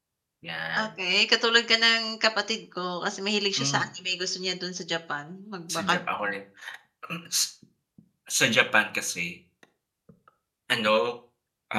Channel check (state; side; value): identical; both; correlation 1.00